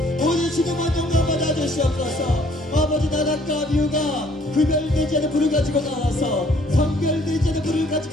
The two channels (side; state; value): both; normal; correlation 0.61